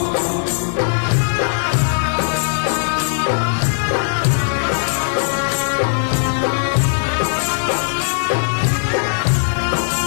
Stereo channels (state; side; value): silent; right; 67 dB below the other